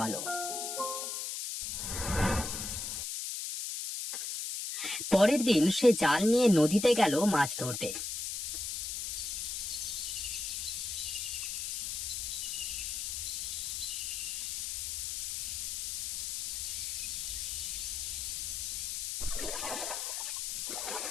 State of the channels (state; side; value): noise; left; hiss, 3 dB below the sound